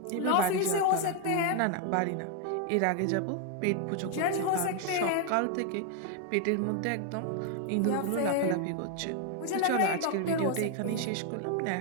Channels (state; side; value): different; both; correlation 0.01